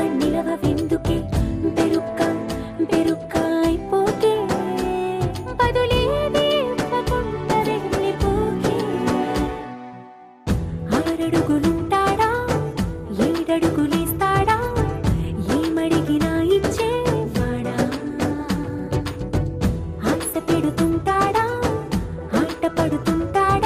నిలవెందుకే బెరుక్క బెరుక్క అయిపోకే బదులేది ఇవ్వకుండా వెళ్ళిపోకే ఆరడుగులుంటాడా ఏడడుగులేస్తాడా ఏమడిగినా ఇచ్చేవాడా ఆశ పెడుతుంటాడా ఆట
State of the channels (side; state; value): both; identical; correlation 1.00